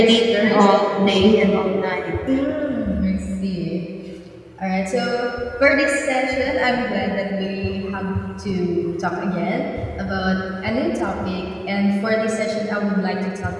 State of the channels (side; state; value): both; identical; correlation 1.00